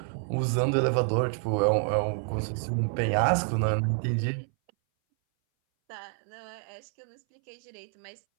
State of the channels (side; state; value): left; silent; 59 dB below the other